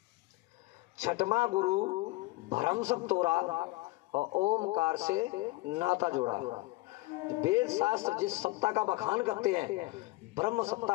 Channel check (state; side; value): quieter; right; 21.6 dB